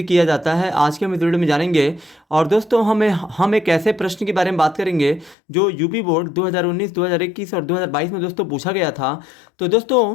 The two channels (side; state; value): right; drops out; at 5.4 s